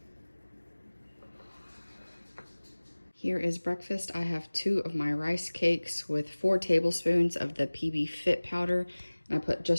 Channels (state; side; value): inverted; both; correlation -1.00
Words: Here is breakfast. I have 2 of my rice cakes with 4 tablespoons of the PB Fit powder. And I put